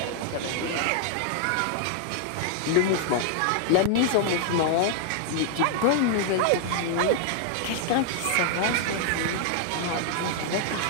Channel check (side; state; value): both; different; correlation 0.00